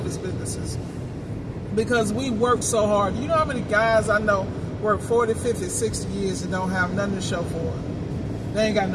businesses, because we work so hard. You know how many guys I know work 40, 50, 60 years and don't have nothing to show for it? They ain't got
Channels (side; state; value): both; identical; correlation 1.00